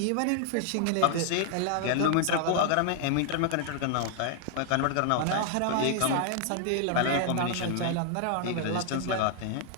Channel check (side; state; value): both; different; correlation 0.00